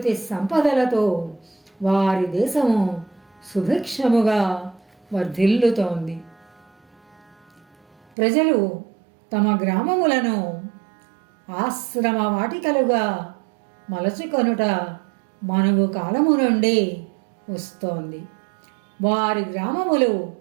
సంపదలతో వారి దేశము సుభిక్షముగా వర్ధిల్లుతోంది. ప్రజలు తమ గ్రామములను ఆశ్రమ వాటికలుగా మలచుకొనుట మనువు కాలము నుండి వస్తోంది. వారి గ్రామములు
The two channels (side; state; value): left; drops out; at 8.0 s